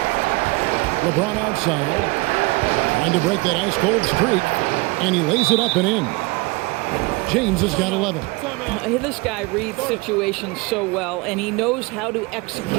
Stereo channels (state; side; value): quieter; left; 25.4 dB